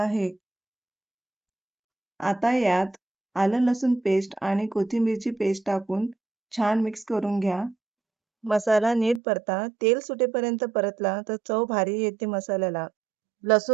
आता यात आलं लसूण पेस्ट आणि कोथिंबीरची पेस्ट टाकून छान मिक्स करून घ्या. मसाला नीट परता. तेल सुटेपर्यंत परतला तर चव भारी येते मसाल्याला.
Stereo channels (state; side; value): drops out; left; at 9.2 s